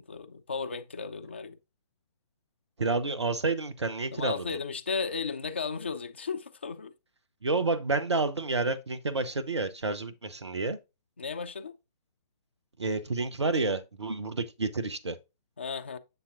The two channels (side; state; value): both; inverted; correlation -0.37